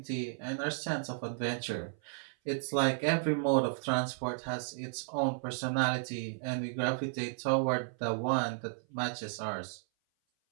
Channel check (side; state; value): left; silent; 55 dB below the other